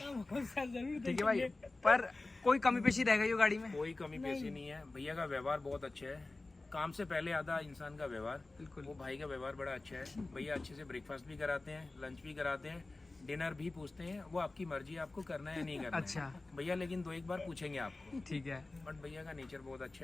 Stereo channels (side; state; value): right; quieter; 3.2 dB